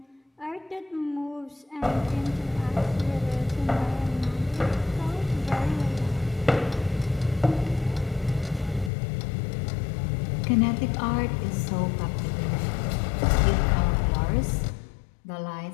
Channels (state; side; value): drops out; right; at 8.9 s